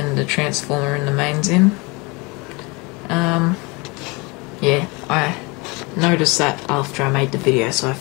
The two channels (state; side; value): quieter; right; 27.1 dB